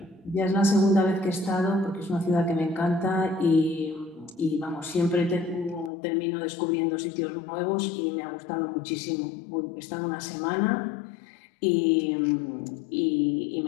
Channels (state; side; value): drops out; right; at 5.9 s